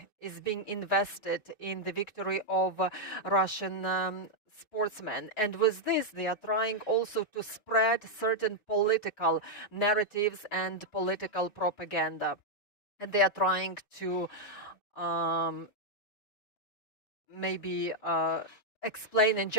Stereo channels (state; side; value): late; right; 4.6 ms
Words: is being invested in the victory of Russian sportsmen. And with this, they are trying also to spread certain political narratives and political propaganda. And they are trying to maybe explain and